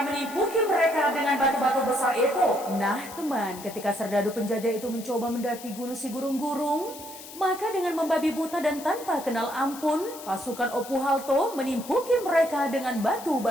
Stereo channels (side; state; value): left; noise; hiss, 15 dB below the sound